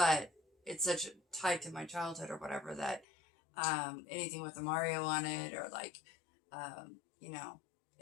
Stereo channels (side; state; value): right; drops out; at 3.1 s